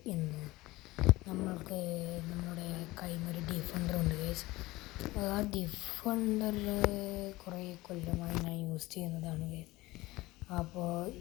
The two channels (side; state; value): right; quieter; 19.6 dB